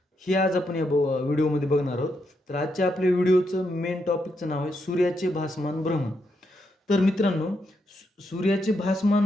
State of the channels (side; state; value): both; normal; correlation 0.81